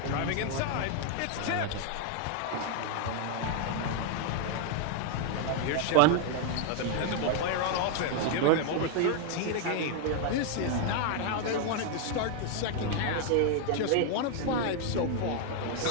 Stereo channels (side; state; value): both; different; correlation 0.00